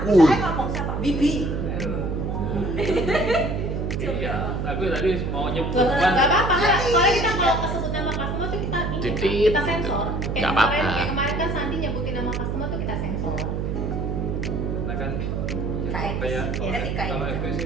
ngomong siapa? Bibi. Iya, aku tadi mau nyebut Nggak apa-apa, nggak. Soalnya kita kalau kesebut nama customer tuh kita Titit. kita sensor. Nggak apa-apa. Kayak kemarin kan Sandi nyebutin nama customer tuh kita sensor. Karena kan Kayak kayak etika ya. kalau FB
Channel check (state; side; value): noise; right; hum, 1 dB below the sound